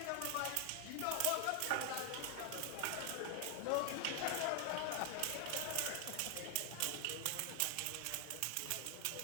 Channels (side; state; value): both; different; correlation 0.00